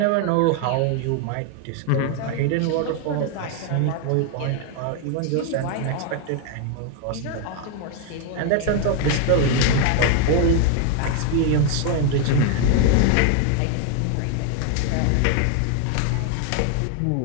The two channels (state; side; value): different; both; correlation 0.00